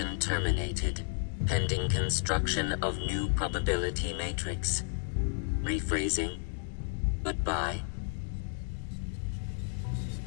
terminated. Pending construction of new probability matrix. Rephrasing. Goodbye.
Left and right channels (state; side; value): silent; right; 56 dB below the other